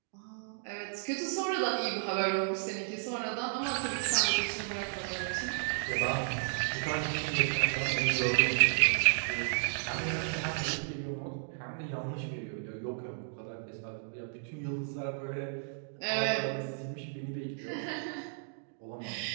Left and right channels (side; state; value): left; silent; digital silence